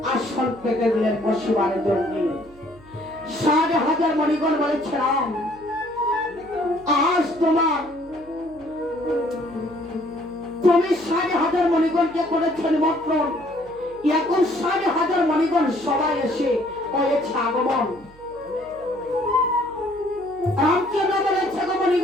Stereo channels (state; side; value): noise; right; hum, 24 dB below the sound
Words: আসন পেতে দিলেন বসিবার জন্য। ৬০,০০০ মণিগণ বলেছে, রাম, আজ তুমি ৬০,০০০ মণিগণকে করেছ নিমন্ত্রণ, এখন ৬০,০০০ মণিগণ সবাই এসে হয়েছে আগমন। রামচন্দ্র বলেছে,